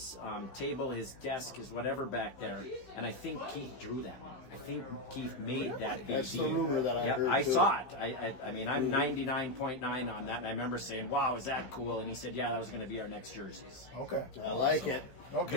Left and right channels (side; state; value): right; late; 15 ms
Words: table, his desk, his whatever back there, and I think Keith drew that. I think Keith made that BD. That's the rumor that I heard. I saw it. I mean, I'm 99.9 on that, and I remember saying, wow, is that cool? And he said, yeah, that was going to be our next jerseys. Okay. I like it.